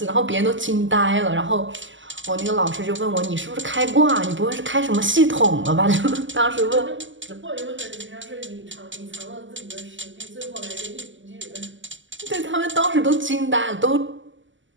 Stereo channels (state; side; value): late; left; 0.55 ms